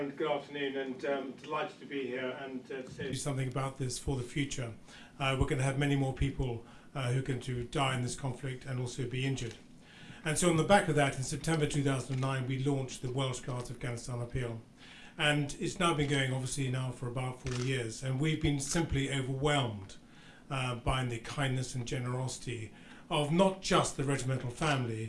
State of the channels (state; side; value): identical; both; correlation 1.00